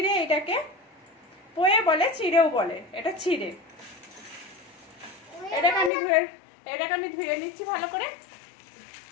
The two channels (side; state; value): right; drops out; at 5.9 s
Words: এটাকে পোয়ে বলে, চিড়েও বলে, এটা চিড়ে। এটাকে আমি ধুয়ে নিচ্ছি ভালো করে,